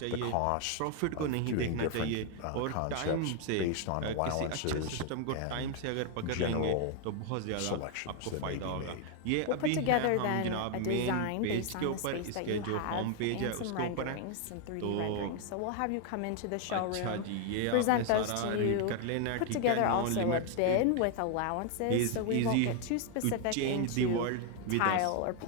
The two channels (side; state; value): both; different; correlation 0.00